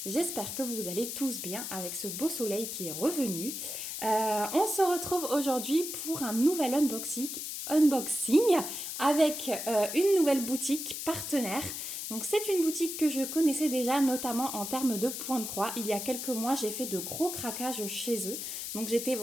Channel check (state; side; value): noise; left; hiss, 6 dB below the sound